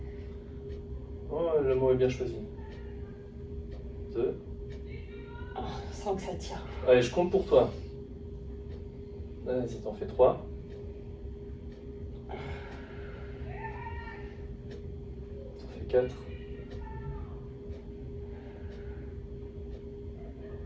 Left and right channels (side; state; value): both; identical; correlation 1.00